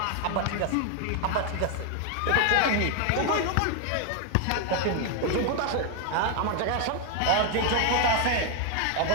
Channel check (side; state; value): both; different; correlation 0.00